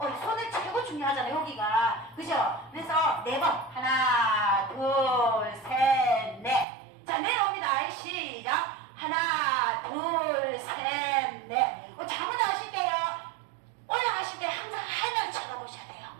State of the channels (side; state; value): left; drops out; at 6.7 s